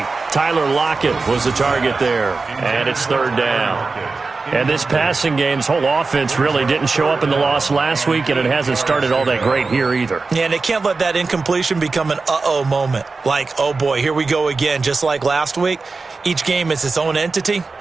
Tyler Lockett was the target there, and it's third down. And this passing game's whole offense really didn't show up in the loss last week, and it hasn't started all that great here either. Yeah, and they can't let that incompletion become an uh-oh moment. Like, oh boy, here we go again, just like last week. Each game is its own entity,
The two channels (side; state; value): left; quieter; 4.1 dB